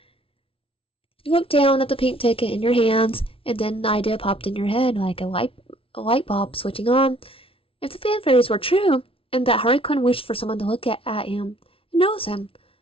You looked down at the pink ticket in your hands, and then an idea popped in your head like a light bulb switching on. If the fan theories were true, and that Harley Quinn wished for someone to look at him and notice him,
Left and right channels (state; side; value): late; right; 0.26 ms